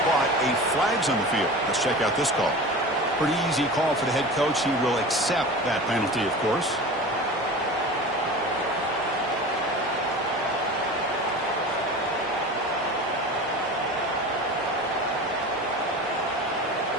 but a flag's on the field. Let's check out this call. Pretty easy call for the head coach. He will accept that penalty, of course.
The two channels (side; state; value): both; normal; correlation 0.34